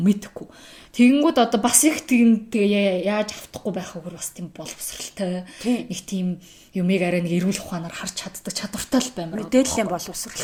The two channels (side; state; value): both; identical; correlation 1.00